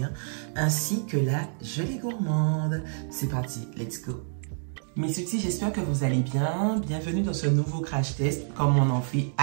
ainsi que la gelée gourmande. C'est parti, let's go! Mes sweeties, j'espère que vous allez bien. Bienvenue dans ce nouveau crash test, comme on en fait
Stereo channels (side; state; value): left; silent; digital silence